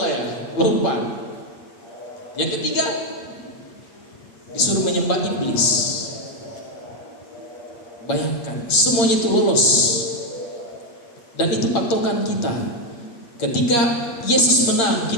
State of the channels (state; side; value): late; right; 8.6 ms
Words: ya, lompat. Yang ketiga disuruh menyembah iblis. Bayangkan, semuanya itu lolos. Dan itu patokan kita. Ketika Yesus menang,